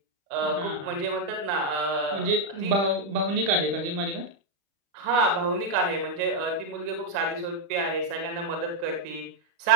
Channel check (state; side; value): late; left; 35 ms